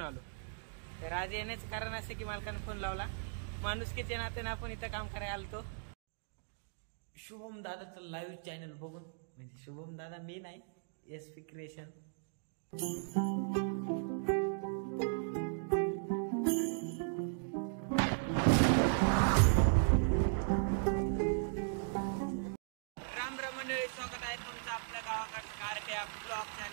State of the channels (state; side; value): silent; left; digital silence